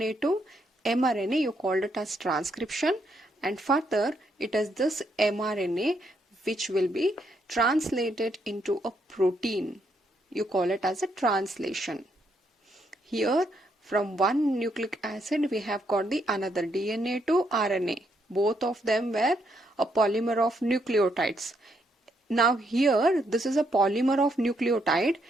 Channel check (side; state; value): both; normal; correlation 0.76